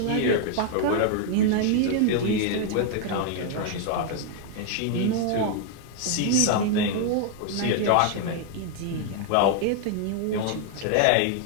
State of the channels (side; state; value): both; different; correlation 0.00